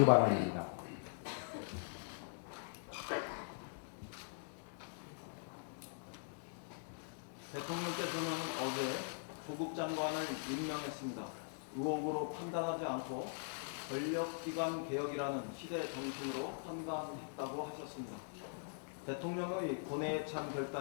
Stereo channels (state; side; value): silent; right; digital silence